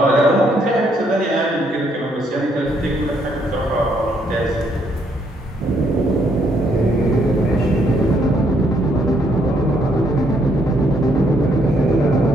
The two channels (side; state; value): both; normal; correlation 0.71